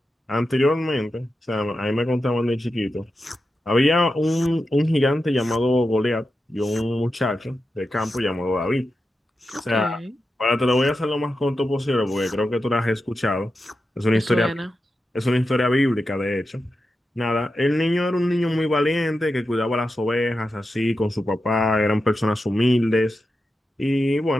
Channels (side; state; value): both; normal; correlation 0.90